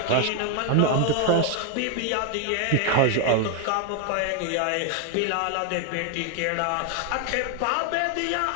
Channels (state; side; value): different; both; correlation 0.00